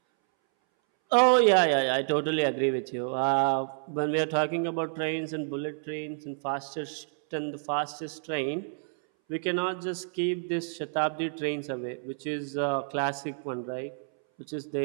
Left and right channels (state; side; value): silent; left; 59 dB below the other